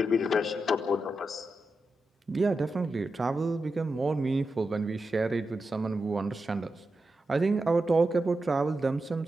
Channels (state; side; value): normal; both; correlation 0.89